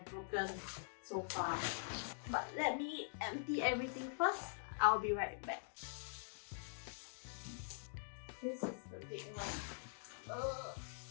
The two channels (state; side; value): silent; right; digital silence